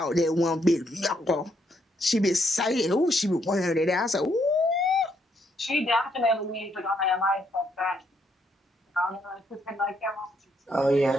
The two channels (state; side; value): normal; both; correlation 0.74